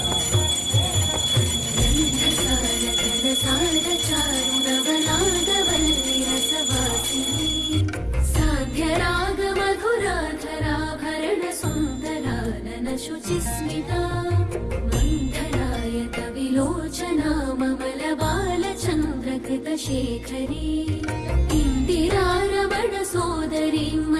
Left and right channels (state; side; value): identical; both; correlation 1.00